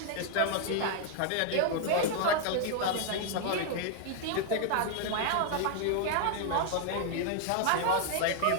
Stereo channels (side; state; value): both; different; correlation 0.00